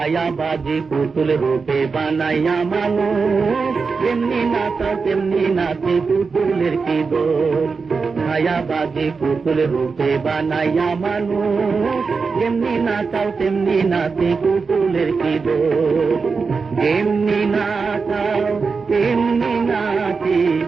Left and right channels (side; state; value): left; quieter; 4.9 dB